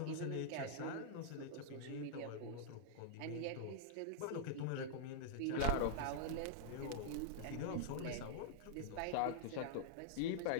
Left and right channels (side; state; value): both; different; correlation -0.01